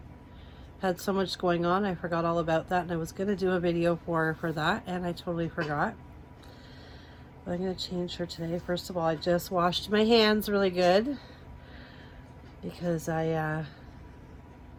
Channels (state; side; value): identical; both; correlation 1.00